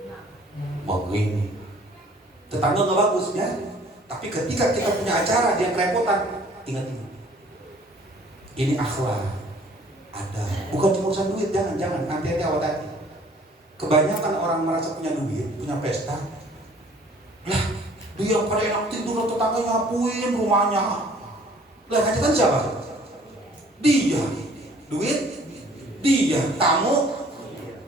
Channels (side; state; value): both; normal; correlation 0.55